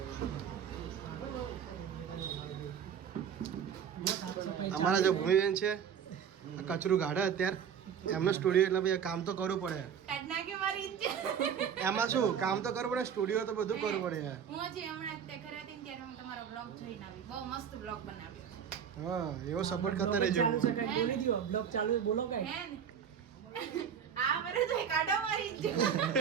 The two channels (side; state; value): left; quieter; 7.9 dB